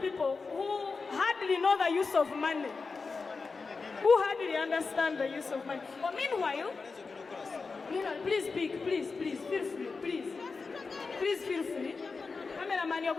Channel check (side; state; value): right; quieter; 4.4 dB